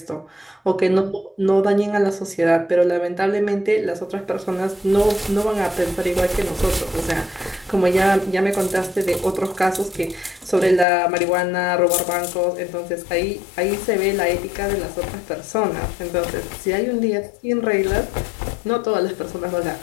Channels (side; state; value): right; drops out; at 10.9 s